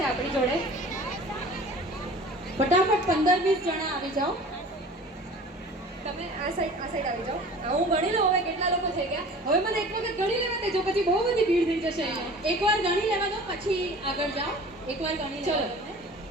આપણી જોડે. ફટાફટ 15-20 જણા આવી જાઓ. તમે આ સાઈડ આવી જાઓ. હું ગણી લઉં હવે કેટલા લોકો થઈ ગયા. હવે મને એક વખત ગણી લેવા દેજો, પછી બહુ બધી ભીડ થઈ જશે અહીંયા. એકવાર ગણી લેવા દો, પછી આગળ જાઓ. એકવાર ગણી ચલો.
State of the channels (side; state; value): both; normal; correlation 0.43